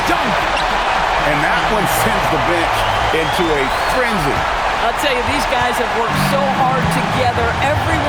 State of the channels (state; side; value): identical; both; correlation 1.00